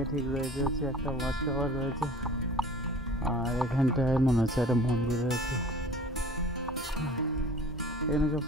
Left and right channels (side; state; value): both; normal; correlation 0.45